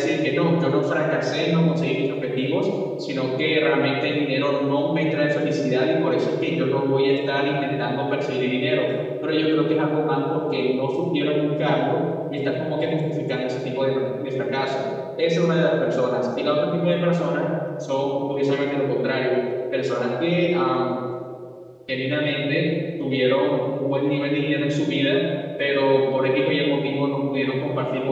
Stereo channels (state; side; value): identical; both; correlation 1.00